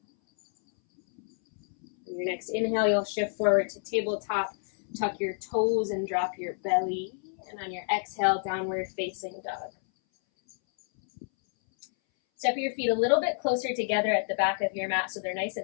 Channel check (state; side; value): silent; right; 59 dB below the other